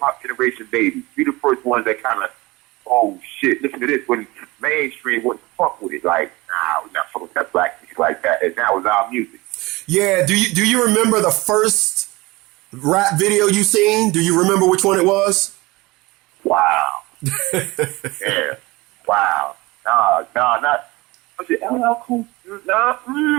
generation babies. We the first ones that kind of, oh shit, listen to this when mainstream wouldn't fuck with it. Like, nah, we're not fucking with that black music like that. And that was our music. Yeah, do you remember the first rap video you seen? Do you remember which one it was? Wow. Yeah. Wow. No, not. Was it LL Cool? Nah.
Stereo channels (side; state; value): left; quieter; 22.1 dB